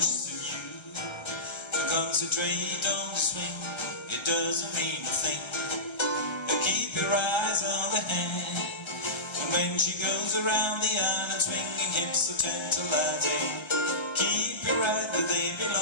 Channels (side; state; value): right; late; 1.3 ms